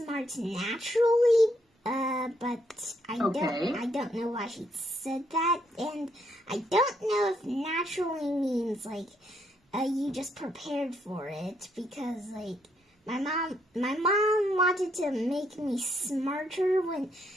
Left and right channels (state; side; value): normal; both; correlation 0.73